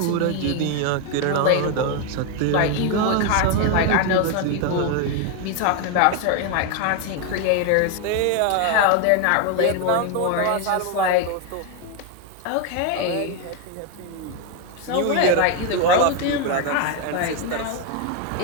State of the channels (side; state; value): both; different; correlation 0.01